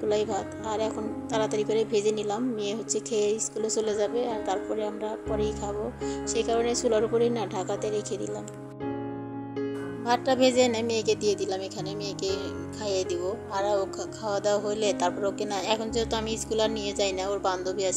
ভাত। আর এখন তাড়াতাড়ি করে ভেজে নিলাম, মেয়ে খেয়ে স্কুলে চলে যাবে, আর তারপরে আমরা পরেই খাবো। সেই কারণে চুলার উপরেই না ঢাকাতে রেখে দিলাম। ভাতটা ভেজে এনে মেয়েকে দিয়ে দিলাম, এখানে মেয়েকে খাইয়ে দিব। আর ও খাওয়া দাওয়া হলে তারপর ওকে না, এখন যেহেতু আমি স্কুল আর নিয়ে যাই না, ওর বান্ধবী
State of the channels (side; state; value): both; identical; correlation 1.00